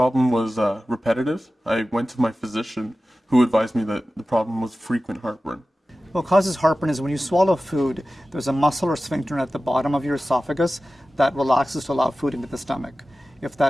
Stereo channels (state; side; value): normal; both; correlation 0.95